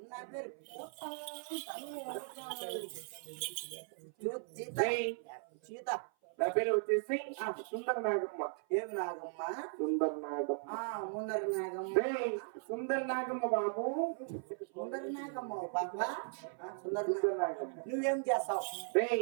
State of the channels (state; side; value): silent; left; 53 dB below the other